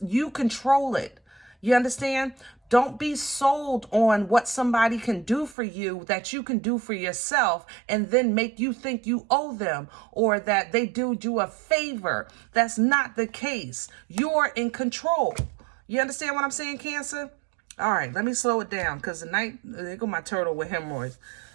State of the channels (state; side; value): drops out; left; at 5.6 s